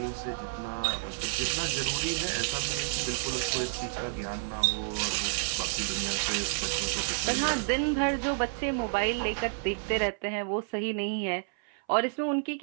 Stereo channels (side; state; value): left; silent; 58 dB below the other